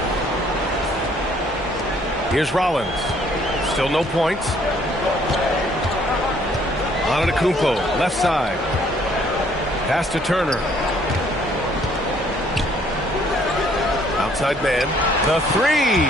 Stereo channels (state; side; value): normal; both; correlation 0.63